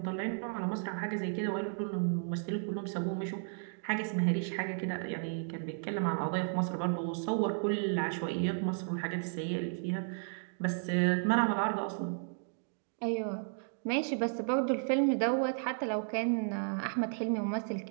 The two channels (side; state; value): left; silent; digital silence